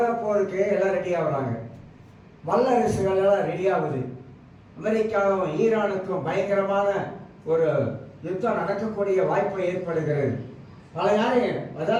போருக்கு எல்லாம் ரெடி ஆகுறாங்க. வல்லரசுகள் எல்லாம் ரெடி ஆகுது. அமெரிக்காவும் ஈரானுக்கும் பயங்கரமான ஒரு யுத்தம் நடக்கக்கூடிய வாய்ப்பு ஏற்படுகிறது. பல யாரையும்,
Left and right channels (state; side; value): identical; both; correlation 1.00